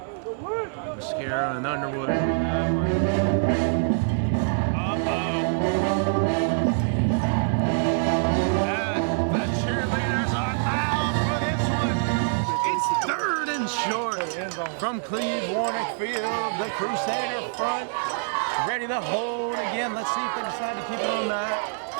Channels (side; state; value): left; silent; digital silence